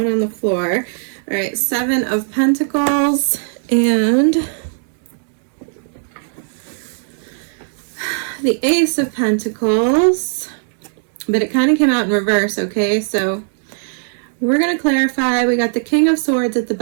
on the floor. All right, Seven of Pentacles and the Ace of Pentacles, but it kind of came out in reverse, okay? So we're going to clarify. We got the King of Swords at the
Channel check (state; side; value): silent; left; digital silence